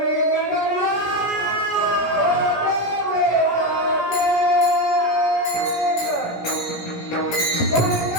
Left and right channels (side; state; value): right; late; 17 ms